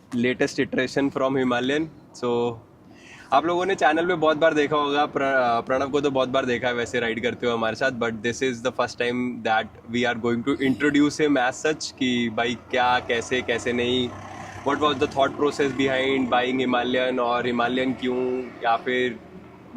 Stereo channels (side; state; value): both; identical; correlation 1.00